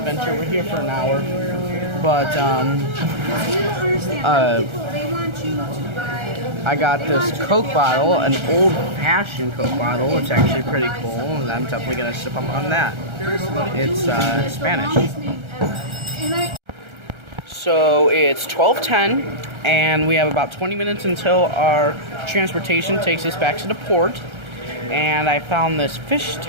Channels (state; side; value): late; left; 1.3 ms